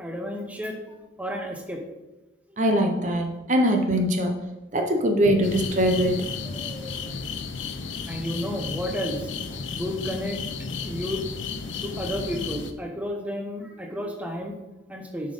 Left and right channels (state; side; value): normal; both; correlation 0.49